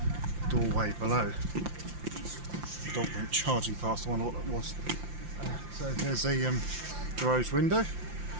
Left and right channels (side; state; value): left; late; 5.8 ms